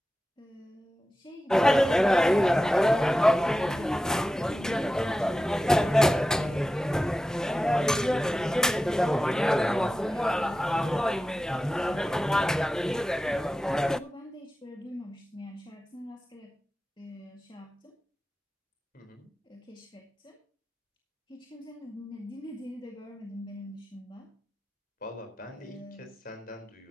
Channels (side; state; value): both; normal; correlation 0.94